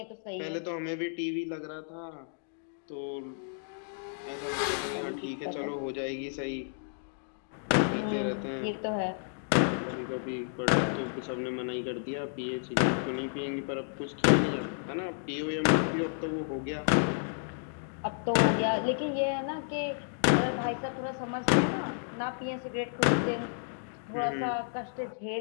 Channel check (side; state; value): right; silent; digital silence